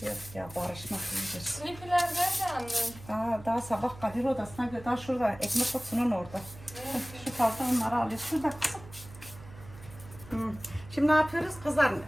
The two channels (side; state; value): right; noise; hum, 17 dB below the sound